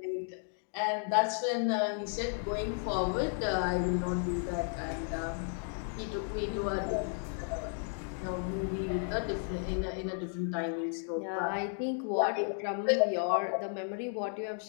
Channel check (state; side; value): silent; right; 55 dB below the other